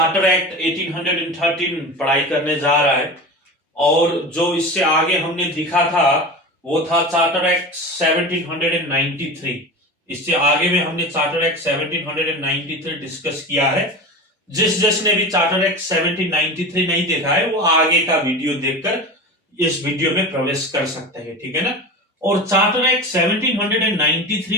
act 1813 पढ़ाई करने जा रहा है और जो इससे आगे हमने लिखा था वो था चार्टर एक्ट 1793। इससे आगे में हमने चार्टर एक्ट 1793 डिस्कस किया है। जिसने भी चार्टर एक्ट 1793 नहीं देखा है वो आगे का वीडियो देखकर इस वीडियो में प्रवेश कर सकते हैं, ठीक है ना। और चार्टर एक्ट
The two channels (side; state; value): both; normal; correlation 0.29